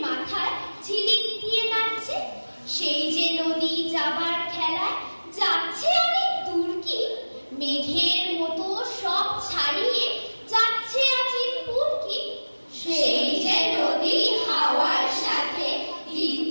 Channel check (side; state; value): both; inverted; correlation -1.00